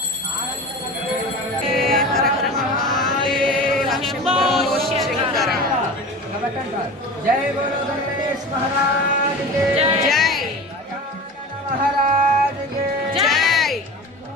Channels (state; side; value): normal; both; correlation 0.33